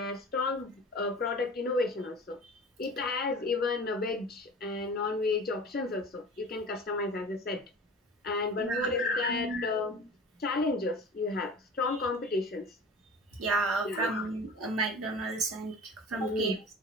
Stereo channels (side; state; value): both; normal; correlation 0.39